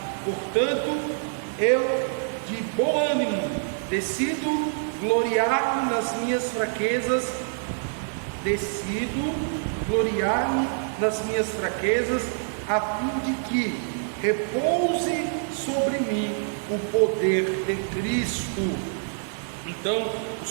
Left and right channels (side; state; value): left; silent; 61 dB below the other